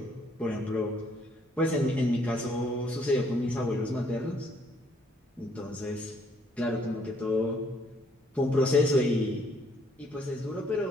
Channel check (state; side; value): normal; both; correlation 0.67